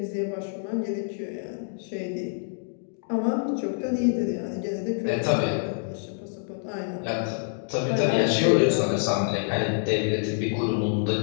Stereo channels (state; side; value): silent; right; digital silence